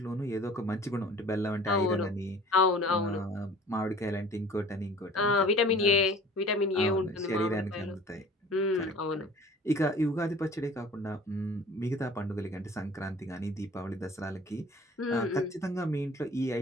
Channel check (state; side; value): normal; both; correlation 0.47